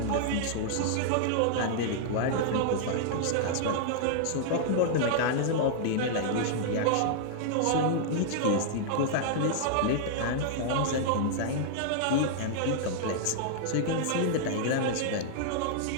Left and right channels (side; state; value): both; different; correlation -0.01